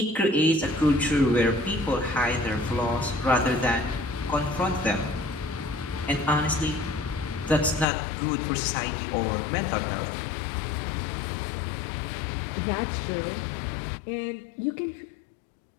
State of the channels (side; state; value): right; drops out; at 7.9 s